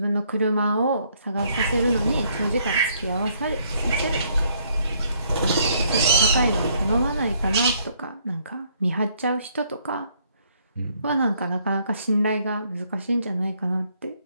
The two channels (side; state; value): both; inverted; correlation -0.68